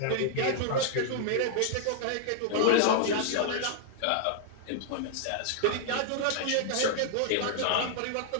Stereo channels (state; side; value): different; both; correlation -0.01